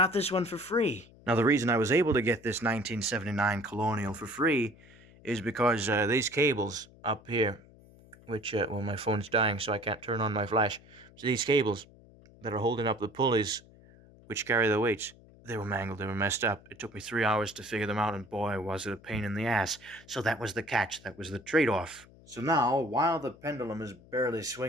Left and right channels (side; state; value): left; noise; hum, 24 dB below the sound